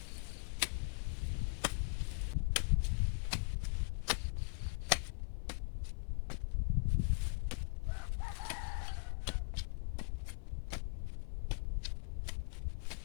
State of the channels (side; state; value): right; silent; 51 dB below the other